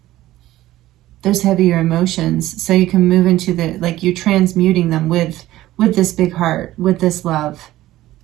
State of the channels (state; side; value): quieter; left; 15.4 dB